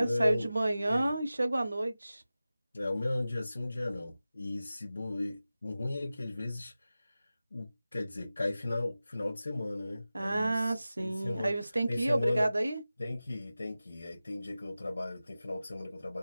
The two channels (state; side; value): inverted; both; correlation -0.95